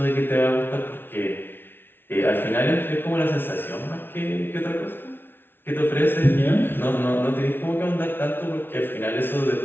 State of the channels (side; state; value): right; late; 0.10 ms